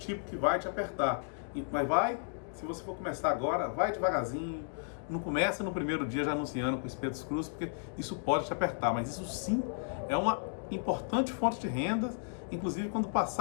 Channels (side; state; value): right; silent; digital silence